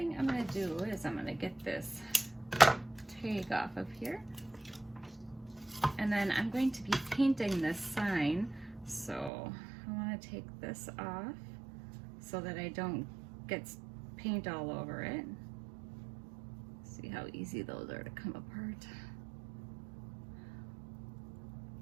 I'm going to do is I'm going to get this tag off of here, and then I'm going to be painting this sign, so I want to take this off so that I don't get paint all over it. See how easy those are to come apart.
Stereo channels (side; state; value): left; drops out; at 9.3 s